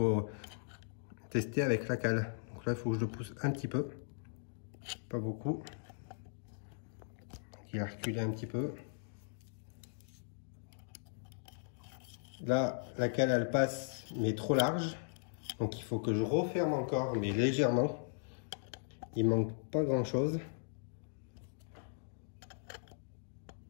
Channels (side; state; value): right; silent; digital silence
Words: tester avec la cale. Donc là il faut que je le pousse un petit peu, pas beaucoup. Il a reculé un petit peu. Là, la cale, elle passe, mais trop large. Donc, il faut que je referme encore, mais légèrement. Il manque pas grand-chose.